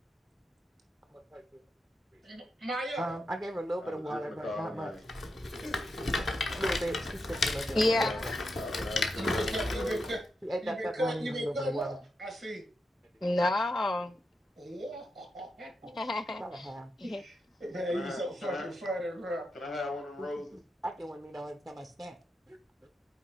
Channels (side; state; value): both; normal; correlation 0.86